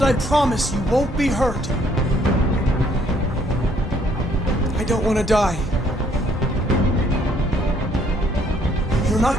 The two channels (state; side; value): normal; both; correlation 0.65